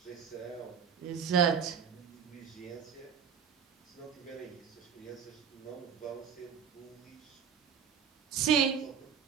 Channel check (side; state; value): left; quieter; 7.3 dB